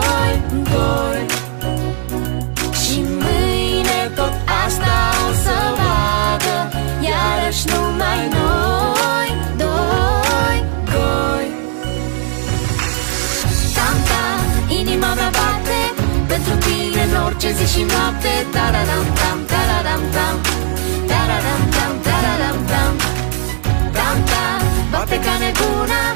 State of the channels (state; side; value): silent; left; digital silence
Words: Și mâine tot asta o să vadă, iarăși numai noi, doi. Tam-tam, inima mea bate pentru tine în orice zi și noapte. Tararam-tam, tararam-tam, tararam-tam, tararam-tam, tam-tam, bate ca nebuna